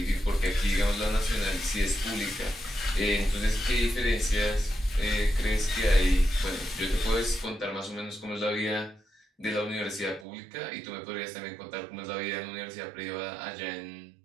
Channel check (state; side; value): drops out; left; at 10.2 s